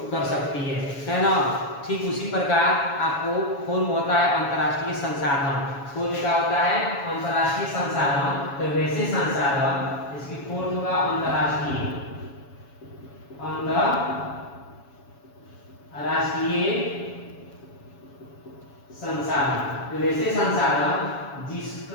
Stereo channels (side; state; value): right; late; 7.2 ms